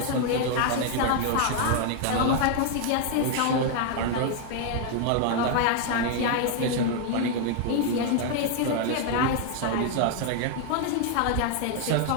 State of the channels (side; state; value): both; different; correlation 0.00